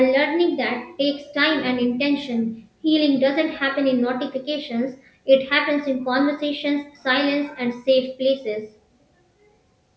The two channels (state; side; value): identical; both; correlation 1.00